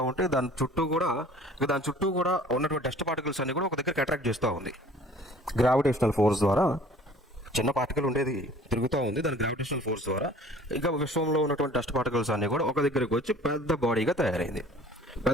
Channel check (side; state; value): both; normal; correlation 0.50